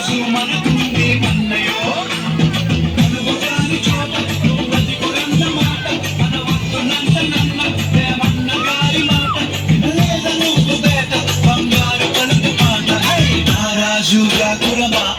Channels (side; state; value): both; identical; correlation 1.00